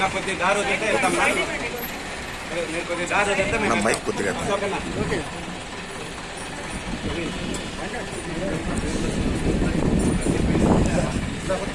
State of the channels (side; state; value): both; identical; correlation 1.00